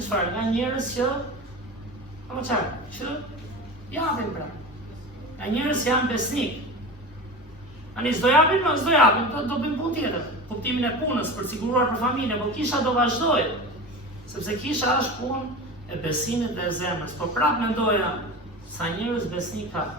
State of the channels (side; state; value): both; normal; correlation 0.30